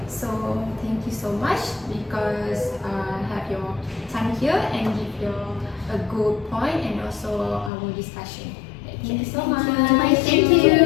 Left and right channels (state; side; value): drops out; right; at 7.7 s